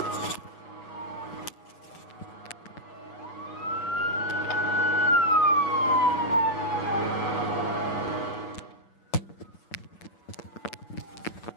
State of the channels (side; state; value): right; late; 7.6 ms